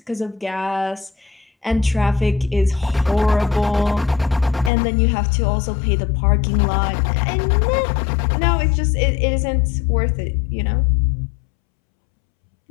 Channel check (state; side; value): drops out; right; at 4.7 s